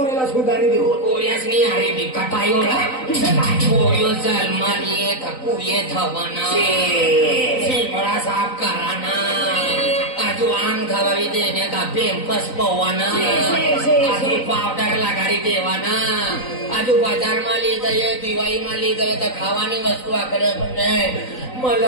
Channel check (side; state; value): right; late; 3.9 ms